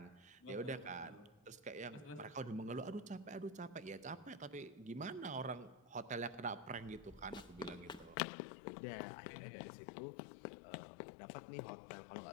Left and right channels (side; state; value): right; drops out; at 8.2 s